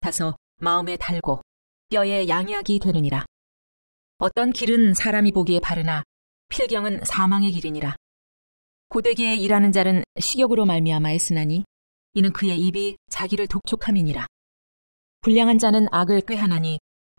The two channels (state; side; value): inverted; both; correlation -1.00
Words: 마음에 달고 뼈에 양약이 되느니라. 어떤 길은 사람이 보기에 바르나 필경은 사망의 길이니라. 고되게 일하는 자는 식욕으로 말미암아 애쓰나니 이는 그의 입이 자기를 독촉함이니라. 불량한 자는 악을 꾀하나니